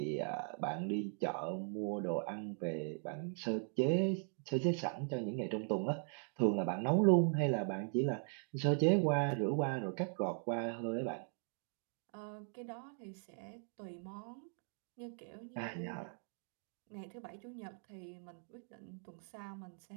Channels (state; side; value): silent; left; 51 dB below the other